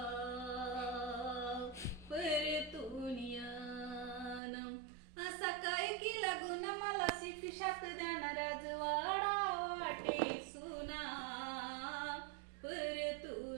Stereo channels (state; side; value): drops out; left; at 4.4 s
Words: परतुनियानम सकाळी की लागून मला शिक्षात देणार राजवाडा वाटे सुना